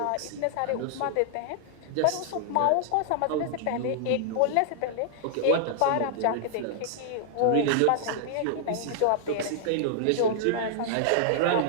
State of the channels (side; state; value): both; different; correlation -0.01